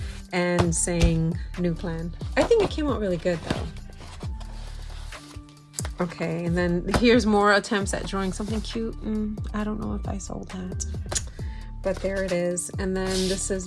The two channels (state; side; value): identical; both; correlation 1.00